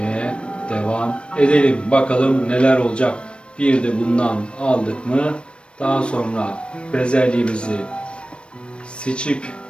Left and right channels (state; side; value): late; right; 0.058 ms